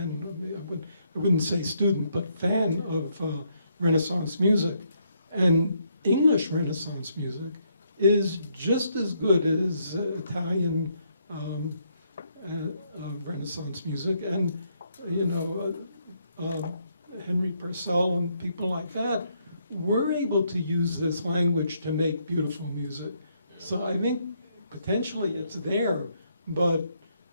I wouldn't say student, but fan of Renaissance music. And English Renaissance music is just as good as Italian Renaissance music. And, Henry Purcell and people like that were able to use this language to make beautiful music. So I think potentially it's there, but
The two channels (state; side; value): inverted; both; correlation -0.74